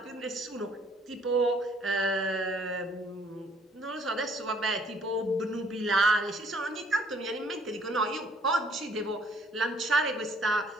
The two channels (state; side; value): normal; both; correlation 0.61